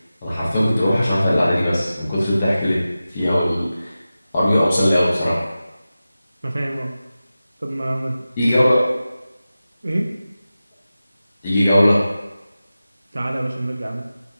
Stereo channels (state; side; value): inverted; both; correlation -0.94